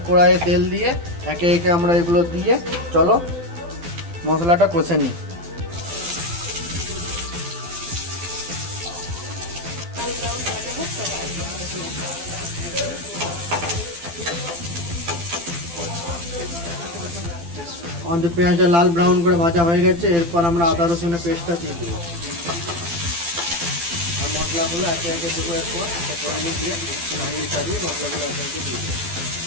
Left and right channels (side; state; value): left; late; 12 ms